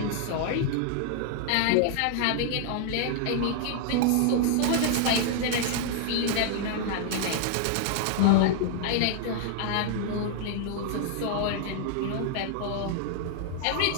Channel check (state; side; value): different; both; correlation 0.00